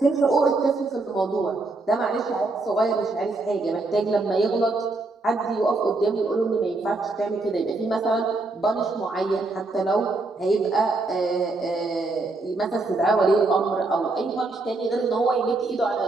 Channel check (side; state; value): left; quieter; 3.3 dB